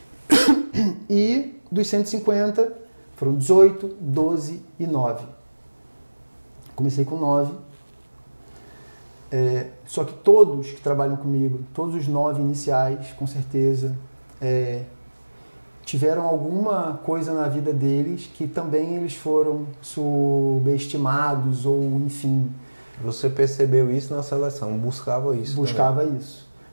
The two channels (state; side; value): inverted; both; correlation -1.00